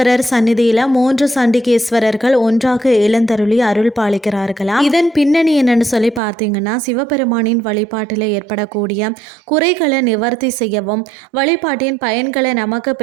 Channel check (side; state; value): left; drops out; at 6.2 s